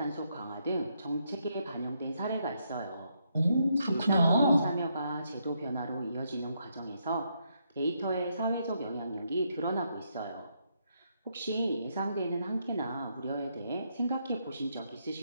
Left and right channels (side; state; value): both; inverted; correlation -0.77